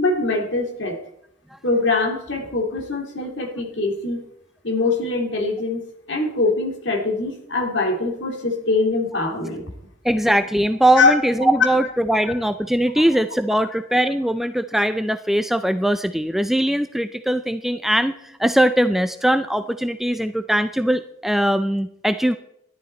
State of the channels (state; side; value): normal; both; correlation 0.65